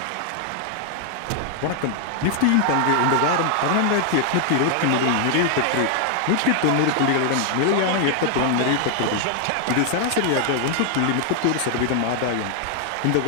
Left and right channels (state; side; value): different; both; correlation 0.00